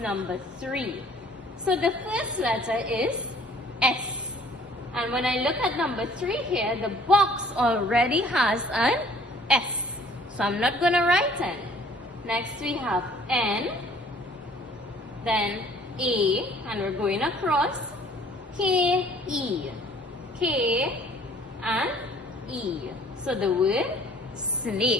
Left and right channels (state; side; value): normal; both; correlation 0.55